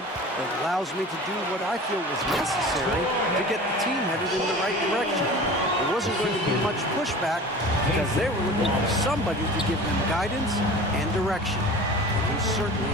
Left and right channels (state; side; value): normal; both; correlation 0.38